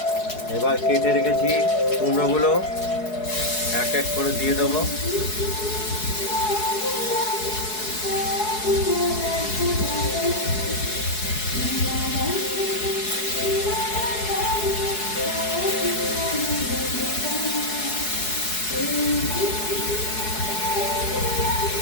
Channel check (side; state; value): right; late; 4.7 ms